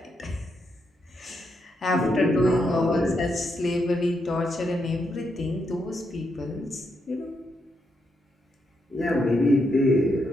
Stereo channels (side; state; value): both; normal; correlation 0.80